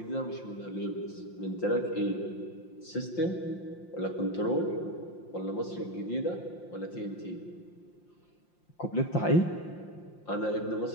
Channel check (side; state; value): right; late; 5.7 ms